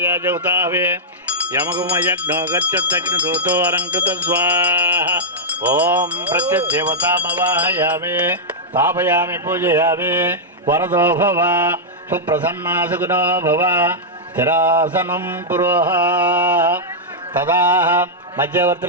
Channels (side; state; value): both; normal; correlation -0.08